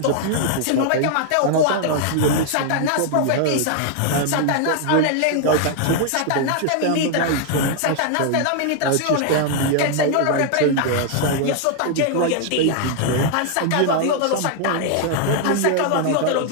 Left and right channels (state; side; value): different; both; correlation 0.00